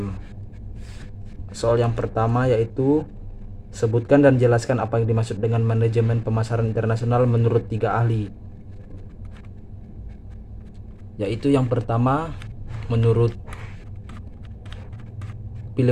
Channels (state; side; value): identical; both; correlation 1.00